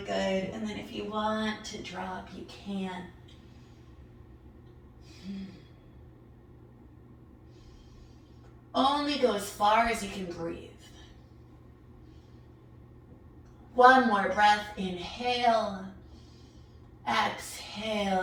good. And then if you want to drop, you can. Only go as far as you can breathe. One more breath. Inhale. Exhale,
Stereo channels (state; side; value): identical; both; correlation 1.00